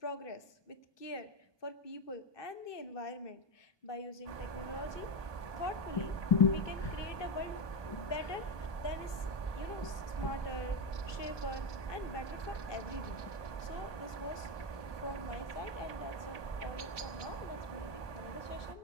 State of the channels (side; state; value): right; late; 1.2 ms